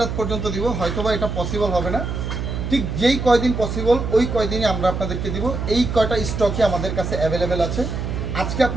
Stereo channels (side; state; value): right; noise; hum, 4 dB below the sound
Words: পর্যন্ত দিব, হয়তোবা এটা পসিবল হবে না। ঠিক যেই কয়দিন পসিবল ওই কয়দিনই আমরা আপনাদেরকে দিব। এই কয়টা স্টকই আমাদের কাছে অ্যাভেলেবেল আছে। আজকে